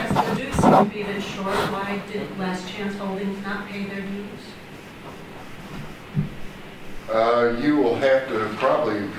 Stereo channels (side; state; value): both; identical; correlation 1.00